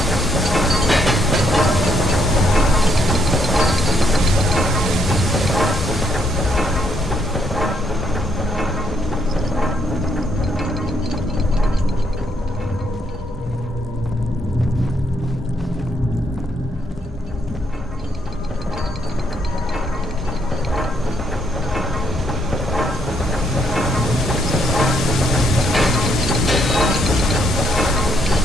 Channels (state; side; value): normal; both; correlation 0.73